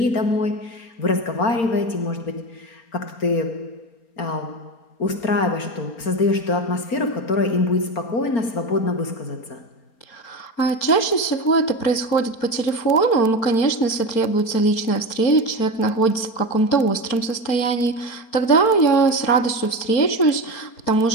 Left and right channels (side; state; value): right; late; 4.3 ms